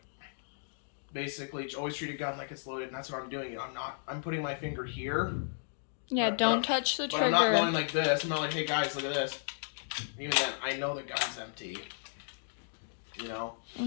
basically, always treat a gun like it's loaded, and that's what I'm doing. I'm putting my finger here. Yeah, don't touch the trigger. I'm not going like this. I'm not like, hey, guys, look at this. Even then, I know the gun's empty.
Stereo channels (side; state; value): right; silent; digital silence